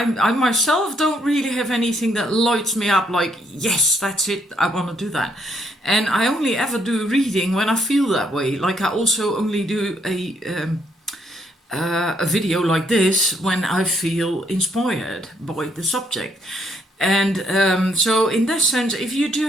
myself don't really have anything that lights me up like, yes, that's it, I want to do that. And I only ever do reading when I feel that way. Like I also only do a video like this when I feel inspired by the subject. And so in that sense, if you do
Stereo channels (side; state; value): both; normal; correlation 0.71